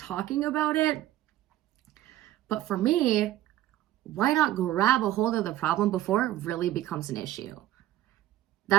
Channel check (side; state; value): left; quieter; 14.0 dB